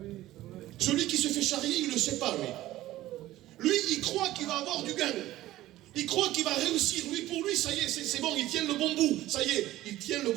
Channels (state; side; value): quieter; left; 15.5 dB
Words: Celui qui se fait charrier, il ne le sait pas, lui. Lui, il croit qu'il va avoir du gain. Il croit qu'il va réussir. Lui, pour lui, ça y est, c'est bon, il tient le bon bout. Ça y est, il tient le